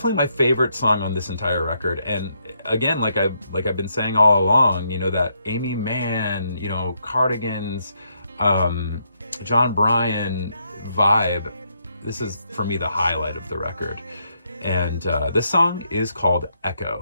my favorite song on this entire record, and again, like I've been saying all along, you know, that Amy Mann, you know, Cardigans, John Bryan vibe. This is for me the highlight of the record, and this song is called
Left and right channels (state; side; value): inverted; both; correlation -0.77